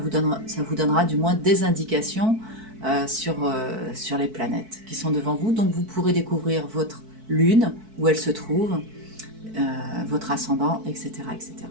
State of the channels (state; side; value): late; left; 4.6 ms